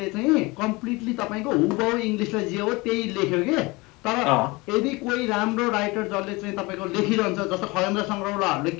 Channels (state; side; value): quieter; right; 24.0 dB